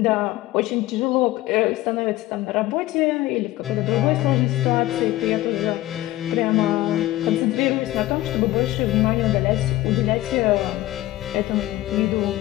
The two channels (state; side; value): quieter; right; 16.3 dB